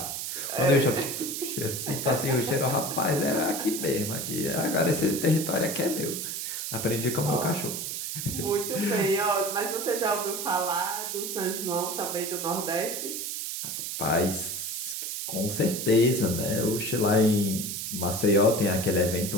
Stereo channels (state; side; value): noise; right; hiss, 4 dB below the sound